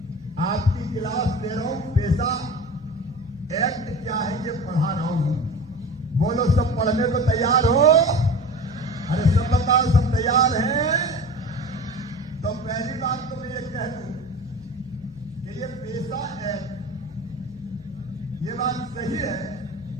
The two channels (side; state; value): left; noise; hum, 23 dB below the sound